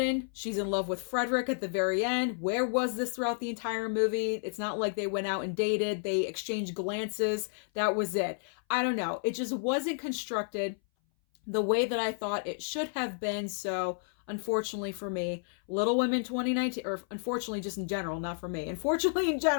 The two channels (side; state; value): right; silent; 57 dB below the other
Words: she's in love with Frederick at the very end. Where was this throughout the entire movie? It's not like they went out and dated. They exchanged glances. That was it. I don't know. It just wasn't constructed the way that I thought it should have been. So unfortunately for me, Little Women 2019, or unfortunately just in general, not for me, unfortunately in